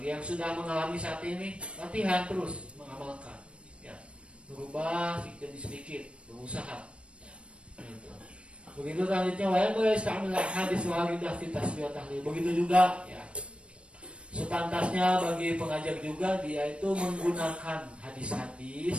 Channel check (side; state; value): left; late; 0.059 ms